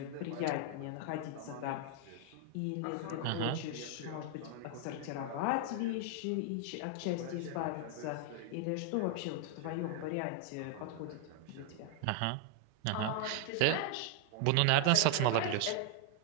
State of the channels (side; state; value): both; different; correlation 0.00